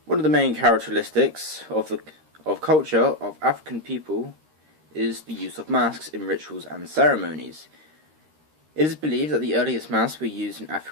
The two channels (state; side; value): late; left; 13 ms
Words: One of the main characteristics of culture of African people is the use of masks in rituals and ceremonies. It is believed that the earliest masks were used in